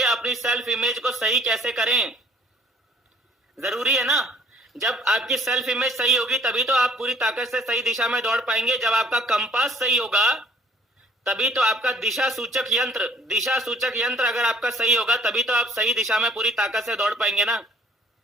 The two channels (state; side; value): normal; both; correlation 0.59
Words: अपनी सेल्फ इमेज को सही कैसे करें, जरूरी है ना। जब आपकी सेल्फ इमेज सही होगी तभी तो आप पूरी ताकत से सही दिशा में दौड़ पाएंगे। जब आपका कंपास सही होगा तभी तो आपका दिशा सूचक यंत्र अगर आपका सही होगा तभी तो आप सही दिशा में पूरी ताकत से दौड़ पाएंगे ना।